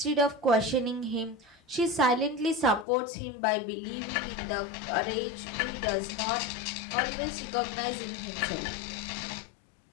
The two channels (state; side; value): drops out; right; at 2.9 s